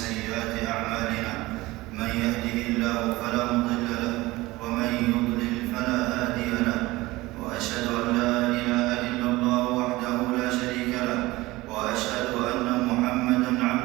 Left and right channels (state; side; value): quieter; left; 19.8 dB